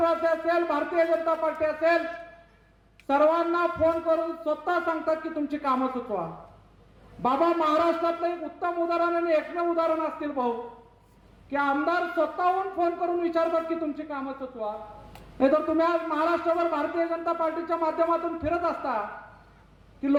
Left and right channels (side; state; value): both; identical; correlation 1.00